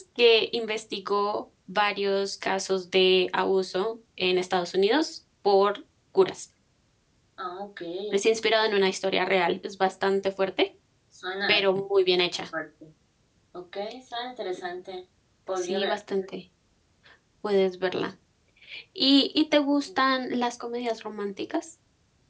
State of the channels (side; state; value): both; identical; correlation 1.00